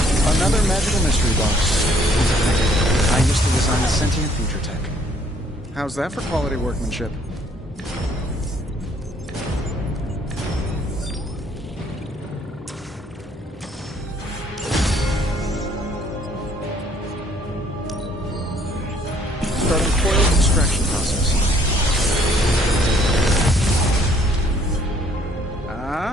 Another magical mystery box. I used to design sentient future tech. How's that for quality workmanship? Starting coil extraction process.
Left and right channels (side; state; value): both; normal; correlation 0.63